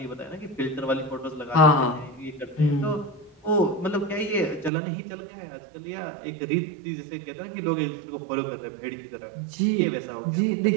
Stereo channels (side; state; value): left; drops out; at 4.7 s